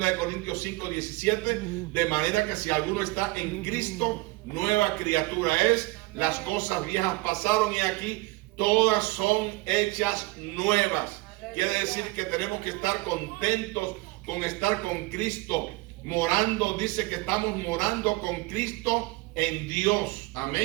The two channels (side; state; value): left; quieter; 22.4 dB